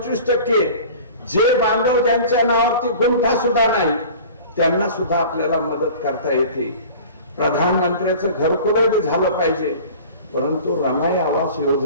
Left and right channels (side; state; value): both; inverted; correlation -0.41